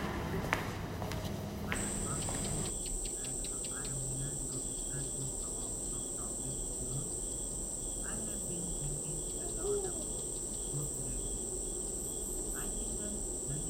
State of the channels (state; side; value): identical; both; correlation 1.00